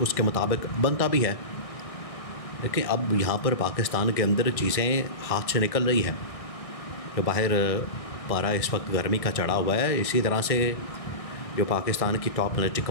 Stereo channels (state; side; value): late; right; 1.6 ms